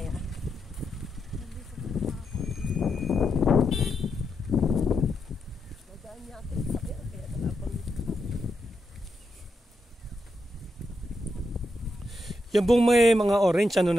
yung buong may mga orange, ano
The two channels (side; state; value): both; normal; correlation 0.84